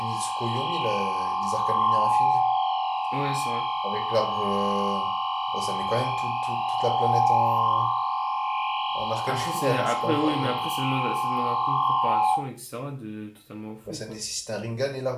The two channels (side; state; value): both; identical; correlation 1.00